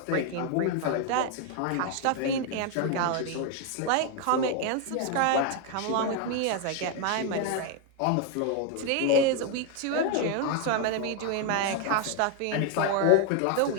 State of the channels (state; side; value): different; both; correlation 0.01